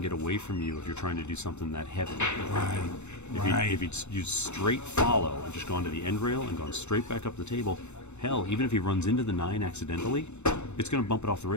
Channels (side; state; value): right; late; 0.82 ms